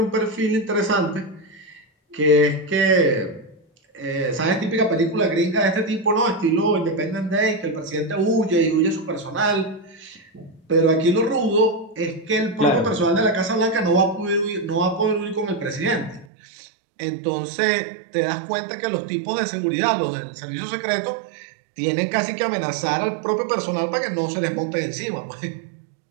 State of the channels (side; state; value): left; drops out; at 16.2 s